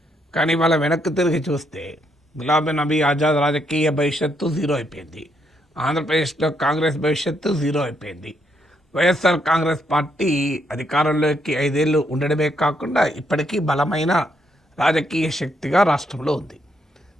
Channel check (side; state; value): both; normal; correlation 0.75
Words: కానీ వాళ్ళ వెనక్కి తిరిగి చూస్తే గులాం నబీ ఆజాద్ రాజకీయ భవిష్యత్తు జీరో అయిపోయింది, ఆంధ్రప్రదేశ్లో కాంగ్రెస్ భవిష్యత్తు జీరో అయిపోయింది. వైఎస్ఆర్ కాంగ్రెస్ పార్టీ అధికారంలోకి 5 ఏళ్ళు ఉండడమే కాకుండా ఇప్పటికీ బలమైన రాజకీయ శక్తిగా రాష్ట్రంలో ఉంది.